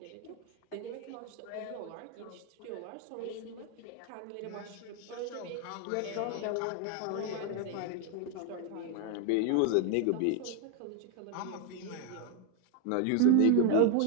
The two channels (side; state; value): both; different; correlation 0.01